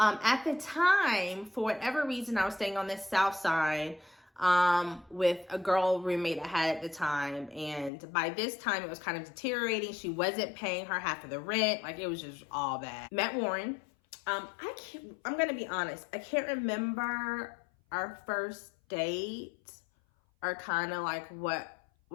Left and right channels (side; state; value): right; drops out; at 7.9 s